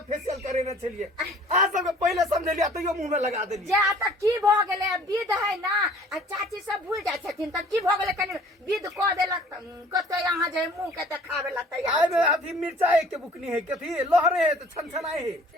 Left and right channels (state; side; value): normal; both; correlation 0.52